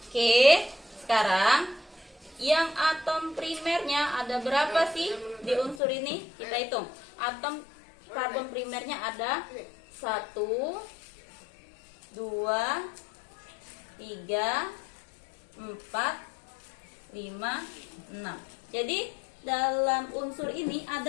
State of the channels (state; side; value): drops out; right; at 5.8 s